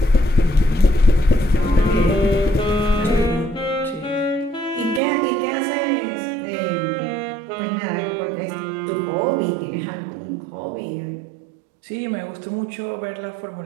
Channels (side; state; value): left; drops out; at 5.0 s